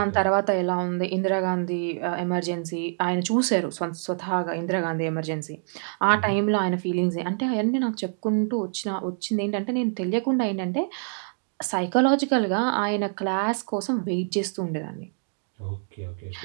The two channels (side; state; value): left; silent; digital silence